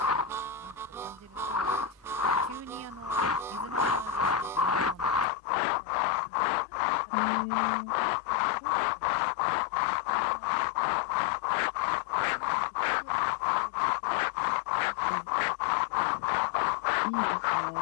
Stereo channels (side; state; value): right; drops out; at 5.2 s